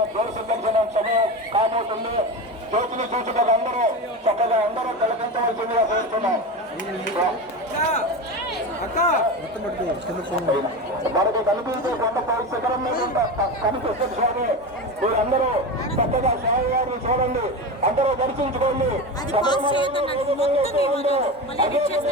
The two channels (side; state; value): both; normal; correlation 0.23